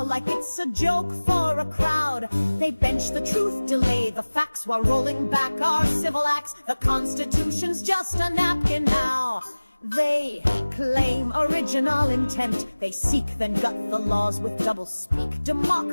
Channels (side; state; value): both; inverted; correlation -1.00